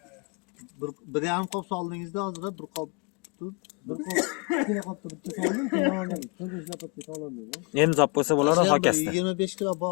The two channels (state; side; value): quieter; right; 30.6 dB